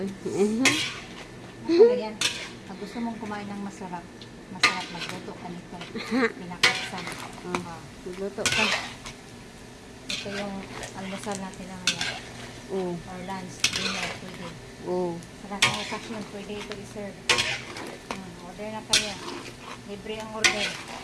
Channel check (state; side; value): identical; both; correlation 1.00